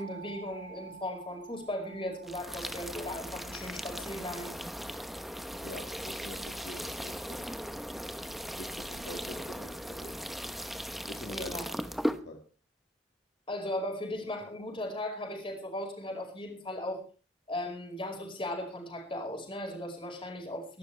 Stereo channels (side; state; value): both; normal; correlation 0.63